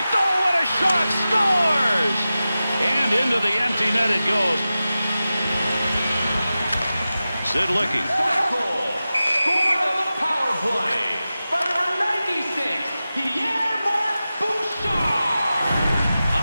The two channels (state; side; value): inverted; both; correlation -0.94